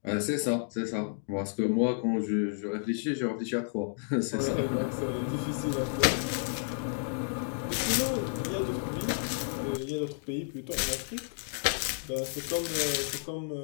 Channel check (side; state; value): right; silent; digital silence